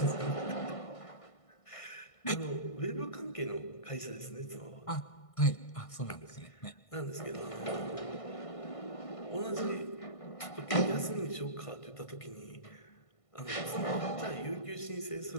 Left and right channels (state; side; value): late; right; 1.5 ms